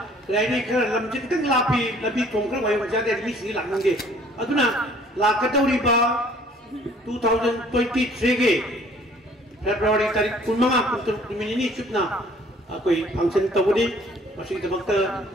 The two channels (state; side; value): normal; both; correlation 0.56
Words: लाइने खर लमजिन तक लापी लबी तोंखर वाय वजादे मी सी लाकनगे अदुना लाकतौरीबा 2023 के फेब्रुआरी तारीख 15 मिनिनी चुपना कोई फंक्शन तबुदी मसी दमकता